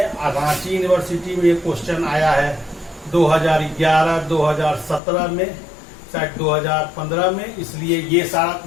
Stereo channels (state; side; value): drops out; right; at 5.0 s